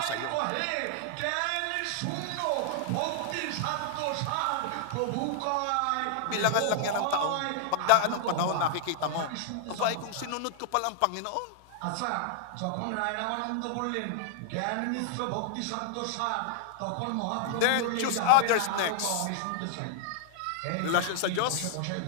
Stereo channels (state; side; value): different; both; correlation -0.01